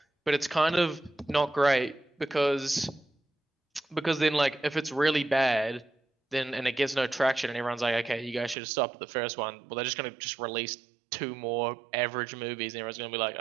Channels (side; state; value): left; drops out; at 8.6 s